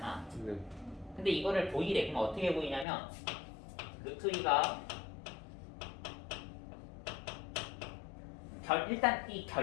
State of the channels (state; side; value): drops out; right; at 2.9 s